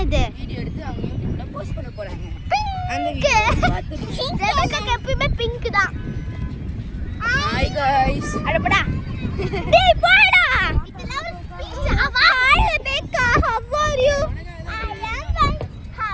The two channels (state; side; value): identical; both; correlation 1.00